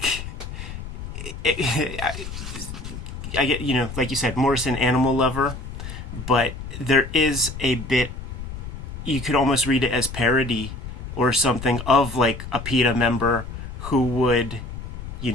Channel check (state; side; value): noise; left; rumble, 9 dB below the sound